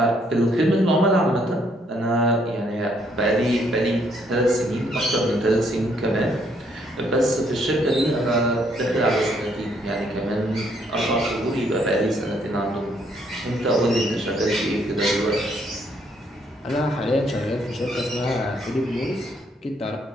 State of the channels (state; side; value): normal; both; correlation 0.69